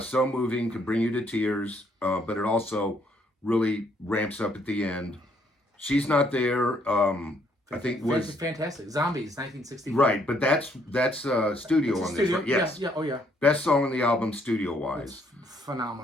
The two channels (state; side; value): normal; both; correlation 0.69